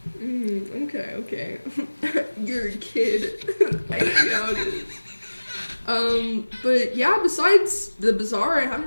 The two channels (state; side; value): inverted; both; correlation -1.00